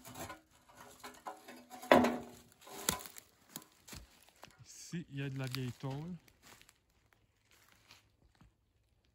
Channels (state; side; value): identical; both; correlation 1.00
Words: Ici, il y a de la vieille tôle.